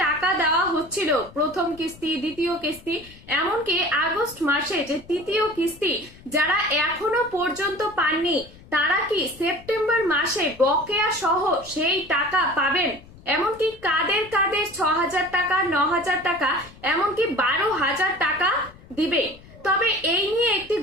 টাকা দেওয়া হচ্ছিল, প্রথম কিস্তি, দ্বিতীয় কিস্তি, এমনকি আগস্ট মাসে যে তৃতীয় কিস্তি, যারা এখনো পর্যন্ত পাননি তারা কি সেপ্টেম্বর মাসে বকেয়া সহ সেই টাকা পাবেন? এমনকি কাদের কাদের ৬,০০০ টাকা, ৯,০০০ টাকা, এমনকি ১২,০০০ টাকা দিবে? তবে এই নিয়ে একটি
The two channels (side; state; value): left; noise; rumble, 22 dB below the sound